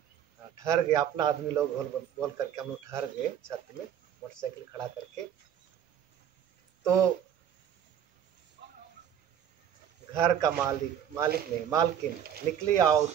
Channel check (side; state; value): left; quieter; 9.5 dB